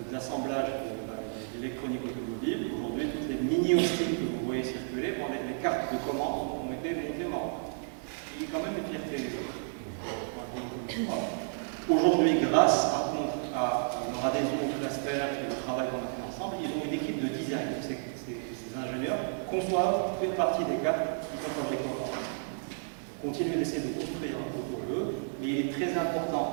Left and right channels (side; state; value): left; silent; digital silence